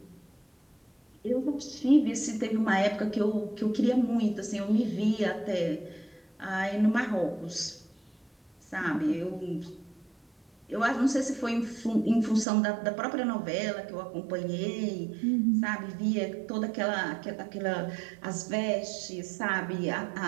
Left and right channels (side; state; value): left; drops out; at 12.5 s